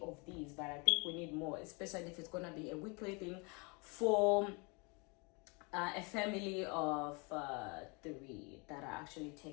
these, but I think we need more, especially if it's gonna be a weekly thing for a family of 3 that I actually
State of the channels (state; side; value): quieter; right; 30.9 dB